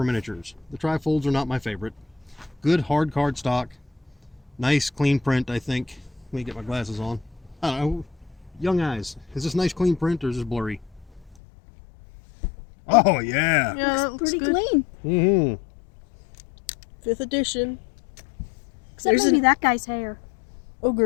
miniatures. The trifolds are not my favorite. Good hard card stock. Nice clean print, I think. Let me get my glasses on. I don't know. Young eyes. Is this nice clean print or is this blurry? Oh, yeah. Yeah, that looks Pretty good. clean. Mm-hmm. 5th edition. Except There's maybe an- that guy's hair.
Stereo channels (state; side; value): drops out; right; at 11.4 s